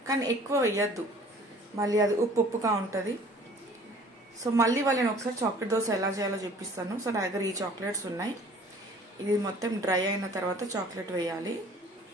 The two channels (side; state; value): both; normal; correlation 0.51